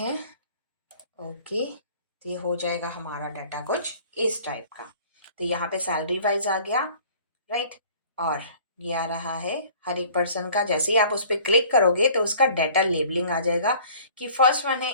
ओके, तो ये हो जाएगा हमारा डाटा कुछ इस टाइप का। तो यहाँ पे सैलरी वाइज आ गया, राइट। और ये आ रहा है हर एक पर्सन का। जैसे ही आप उस पर क्लिक करोगे तो उसका डाटा लेबलिंग आ जाएगा कि फर्स्ट वन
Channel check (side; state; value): both; inverted; correlation -0.50